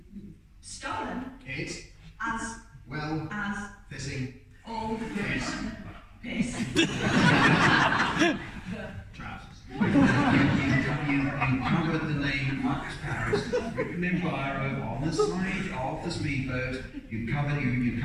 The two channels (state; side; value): identical; both; correlation 1.00